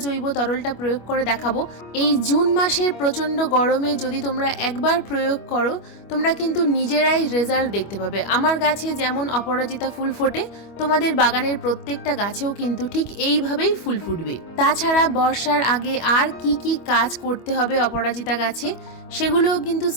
জৈব তরলটা প্রয়োগ করে দেখাবো, এই জুন মাসের প্রচণ্ড গরমে যদি তোমরা একবার প্রয়োগ করো, তোমরা কিন্তু নিজেরাই রেজাল্ট দেখতে পাবে। আমার গাছে যেমন অপরাজিতা ফুল ফোটে, তোমাদের বাগানের প্রত্যেকটা গাছেও কিন্তু ঠিক এইভাবেই ফুল ফুটবে। তাছাড়া বর্ষার আগে আর কি কি কাজ করতে হবে অপরাজিতা গাছে, সেগুলোও কিন্তু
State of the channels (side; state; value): right; late; 25 ms